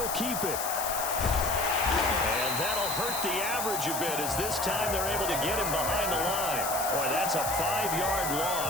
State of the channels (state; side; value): noise; left; hiss, 4 dB below the sound